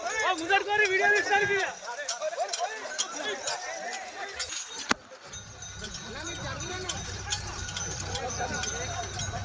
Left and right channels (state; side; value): identical; both; correlation 1.00